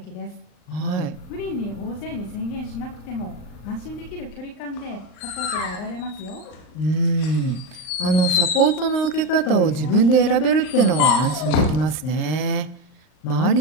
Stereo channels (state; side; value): late; right; 39 ms